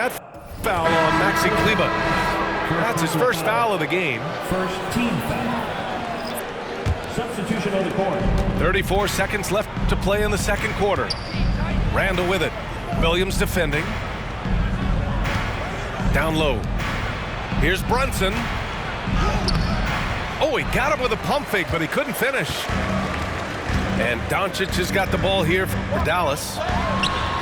foul on Maxi Kleber. That's his first foul of the game. First team foul. Substitution on the court. 34 seconds left to play in the second quarter. Randall with it. Williams defending. Down low. Here's Brunson. Oh, he got him with a pump fake, but he couldn't finish. And Doncic has got the ball here for Dallas.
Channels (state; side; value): identical; both; correlation 1.00